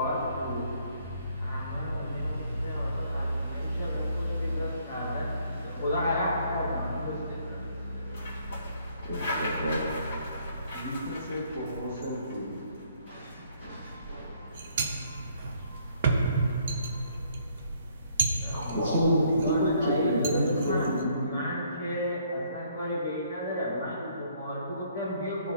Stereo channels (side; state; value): both; inverted; correlation -0.66